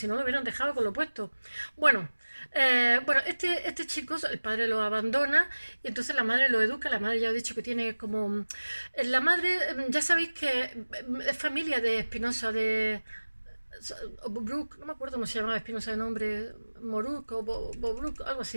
no lo hubieran dejado con lo puesto. Bueno, este chico, el padre lo abandona y entonces la madre lo educa, la madre ya he dicho que tiene como... La madre, ya sabéis que es familia de Espinosa, de... Brook, no me acuerdo cómo se llamaba Espinosa de nombre, Moruk o Bobruk, algo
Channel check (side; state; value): both; inverted; correlation -1.00